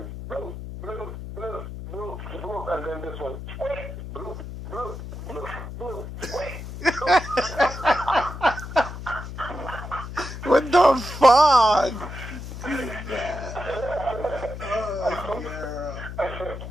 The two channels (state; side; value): noise; left; hum, 9 dB below the sound